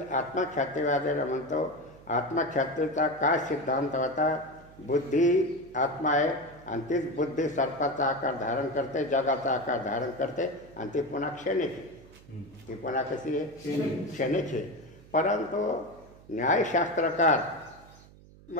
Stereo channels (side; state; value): right; noise; hum, 23 dB below the sound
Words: आत्मख्यातीवादीला म्हणतो. आत्मख्यातीचा काय सिद्धांत होता? बुद्धी आत्मा आहे आणि तीच बुद्धी सर्पाचा आकार धारण करते, जगाचा आकार धारण करते आणि ती पुन्हा क्षणिक आहे. ती पुन्हा कशी आहे? क्षणिक आहे. परंतु न्यायशास्त्रकार